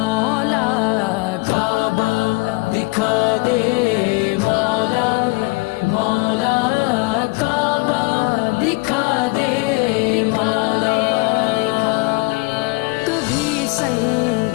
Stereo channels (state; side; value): quieter; right; 25.5 dB